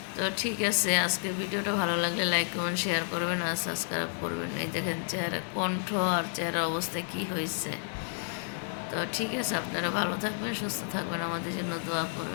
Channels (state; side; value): silent; right; digital silence